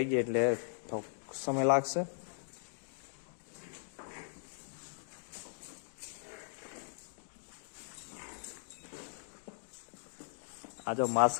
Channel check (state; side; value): silent; right; digital silence